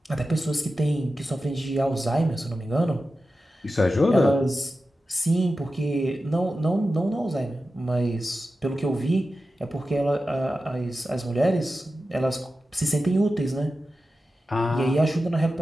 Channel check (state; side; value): normal; both; correlation 0.93